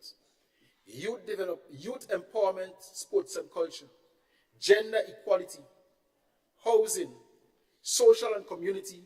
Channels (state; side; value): identical; both; correlation 1.00